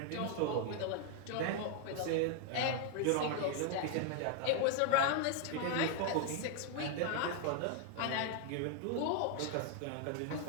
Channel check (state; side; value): different; both; correlation 0.00